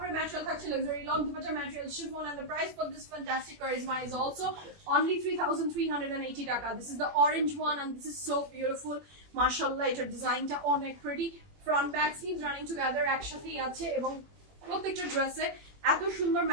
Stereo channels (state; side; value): late; left; 21 ms